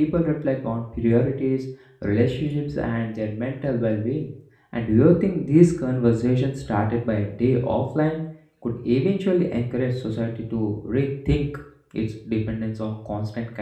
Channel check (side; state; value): both; identical; correlation 1.00